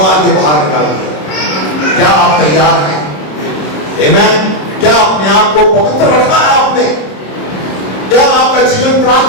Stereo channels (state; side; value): late; right; 27 ms